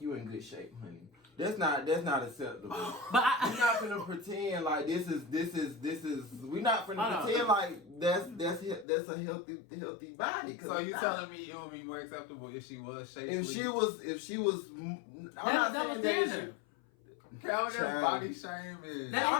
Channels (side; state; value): right; drops out; at 8.8 s